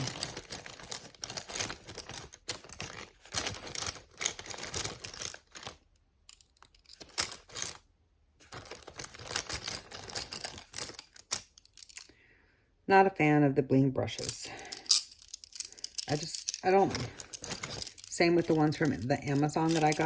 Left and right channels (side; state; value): both; identical; correlation 1.00